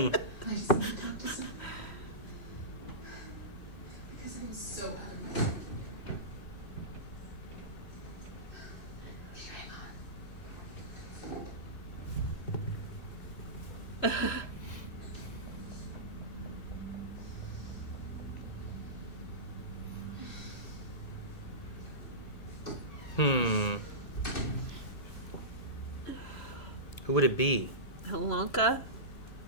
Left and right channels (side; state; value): right; late; 2.6 ms